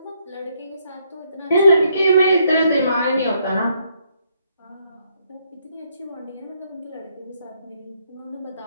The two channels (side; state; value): both; inverted; correlation -0.73